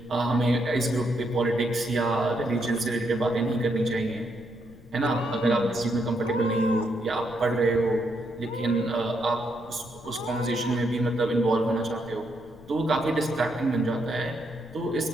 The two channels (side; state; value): left; noise; rumble, 21 dB below the sound